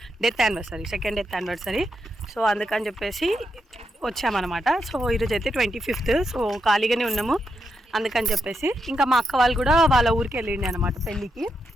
death anniversary, second death anniversary. So అందుకని చెప్పేసి వచ్చామన్నమాట. సో ఈరోజు అయితే 25th. సో ఖాళీగానే ఉన్నాము అందుకని చెప్పేసి. ఇంకా మా అక్క వాళ్ళు కూడా వాళ్ళ ఊరికి వెళ్ళిండి అనమాట పెళ్ళికి.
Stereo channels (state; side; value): normal; both; correlation 0.83